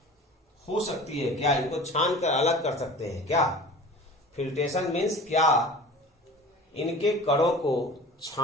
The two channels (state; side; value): normal; both; correlation 0.39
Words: हो सकती है क्या, इनको छान कर अलग कर सकते हैं क्या? फिल्ट्रेशन मीन्स क्या इनके कणों को